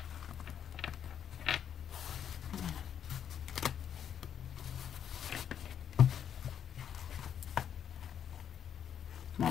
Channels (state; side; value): quieter; right; 8.7 dB